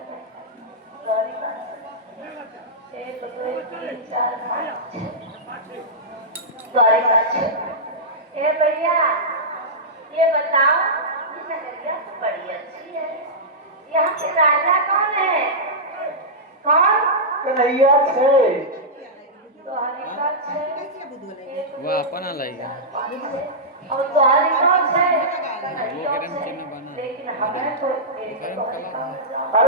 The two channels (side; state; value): both; normal; correlation -0.13